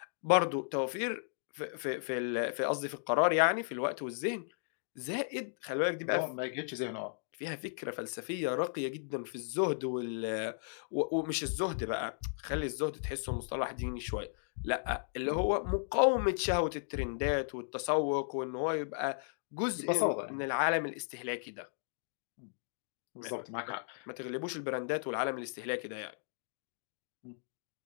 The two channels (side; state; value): right; silent; digital silence